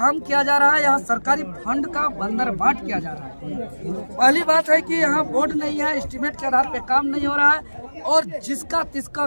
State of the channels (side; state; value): both; inverted; correlation -1.00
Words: किया जा रहा है। यहाँ सरकारी फंड का बंदरबाट किया जा रहा है। पहली बात है कि यहाँ बोर्ड नहीं है, एस्टीमेट के आधार पे काम नहीं हो रहा है और जिसका तिसका